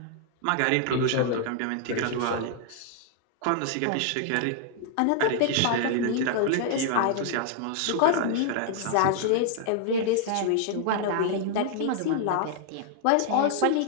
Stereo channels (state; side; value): different; both; correlation -0.01